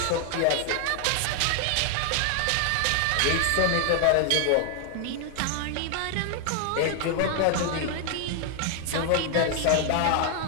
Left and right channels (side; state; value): both; different; correlation 0.00